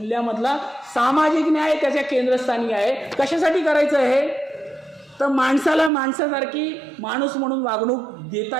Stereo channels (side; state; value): left; drops out; at 5.9 s